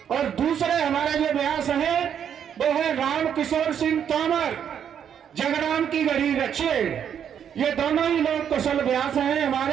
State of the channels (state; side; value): quieter; left; 8.6 dB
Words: और दूसरे हमारे जो व्यास है वो है राम किशोर सिंह तोमर, जगराम की गढ़ी रछेड़। ये दोनों ही लोग कुशल व्यास हैं